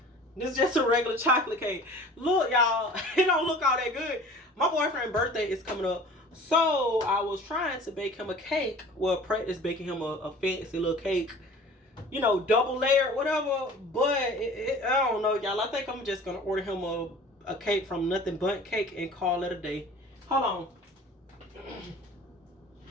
this is just a regular chocolate cake. Look, y'all, it don't look all that good. My boyfriend's birthday is coming up. So I was trying to bake him a cake. Well, practice baking him a fancy little cake. You know, double layered, whatever. But I don't know, y'all. I think I'm just going to order him a cake from Nothing But Cake and call it a day. Hold on.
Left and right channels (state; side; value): normal; both; correlation 0.44